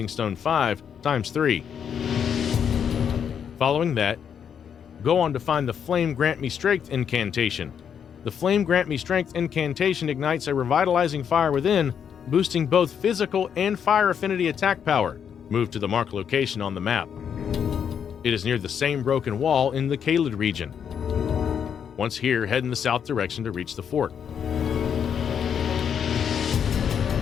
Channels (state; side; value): quieter; right; 7.9 dB